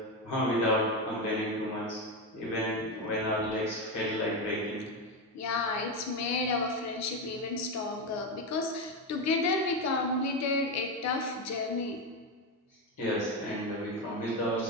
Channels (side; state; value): both; normal; correlation 0.12